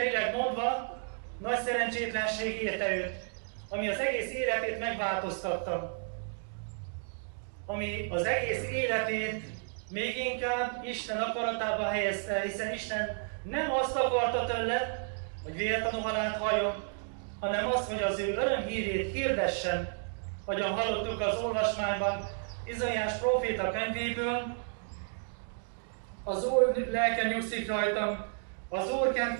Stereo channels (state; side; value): silent; left; 56 dB below the other